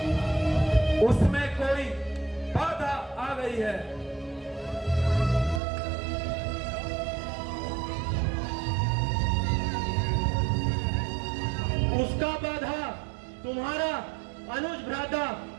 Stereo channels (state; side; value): drops out; left; at 5.6 s